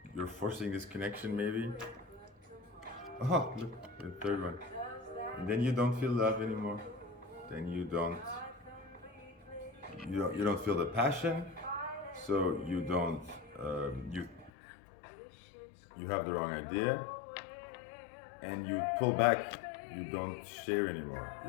you're forcing this connection, maybe. Oh, look, the third one. And then you don't feel love anymore. Then you don't feel the passion. So you don't you have the wrong idea, and you pull back. You don't share anymore.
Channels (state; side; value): drops out; right; at 14.5 s